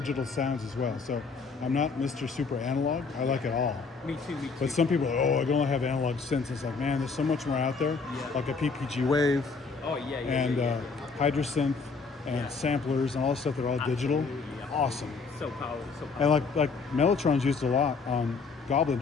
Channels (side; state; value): right; quieter; 4.7 dB